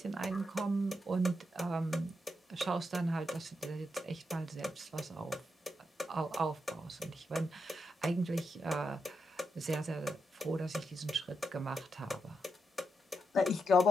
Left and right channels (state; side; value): normal; both; correlation 0.84